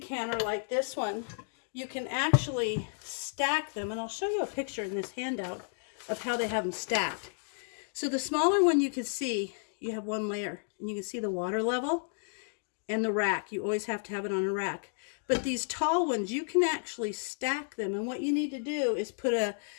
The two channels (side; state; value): right; silent; digital silence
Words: canner like this one, you can actually stack them. And I'll show you a picture in this handout of how they have them stacked. So the smaller one, you can see you have one layer, and you can see the water level and the rack. You always have to have it on a rack. But these tall ones, you can actually stack them. And what you need to do is put